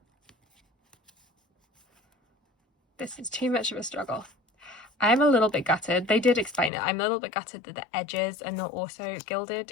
this is too much of a struggle. I'm a little bit gutted. They did explain it. I'm a little bit gutted that the edges are not also gilded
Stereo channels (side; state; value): right; drops out; at 6.7 s